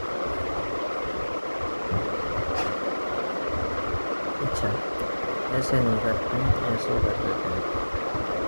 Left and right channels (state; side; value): inverted; both; correlation -1.00